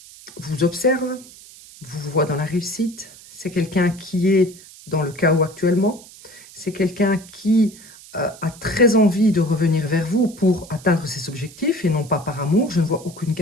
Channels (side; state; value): right; noise; hiss, 20 dB below the sound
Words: vous observe, vous voit dans la réussite. C'est quelqu'un qui est dans le chaos actuellement. C'est quelqu'un qui a très envie de revenir vers vous pour atteindre ses objectifs et non pas par amour. Je ne vois aucune